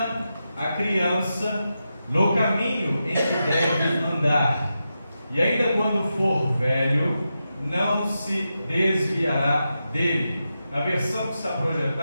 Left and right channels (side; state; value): both; inverted; correlation -0.89